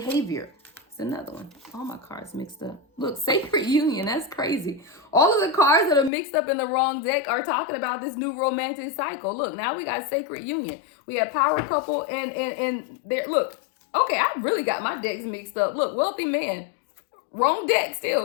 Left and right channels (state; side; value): drops out; right; at 6.1 s